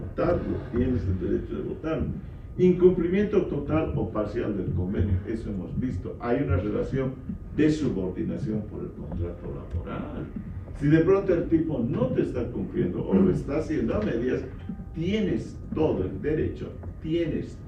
tienes el derecho de votarlo. Incumplimiento total o parcial del convenio, eso hemos visto. Hay una relación de subordinación por el contrato laboral. Si de pronto el tipo no te está cumpliendo o lo está haciendo a medias, tienes todo el derecho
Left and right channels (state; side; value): identical; both; correlation 1.00